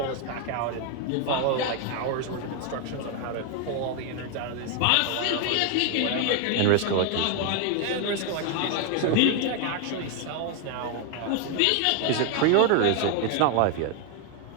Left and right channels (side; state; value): both; different; correlation 0.01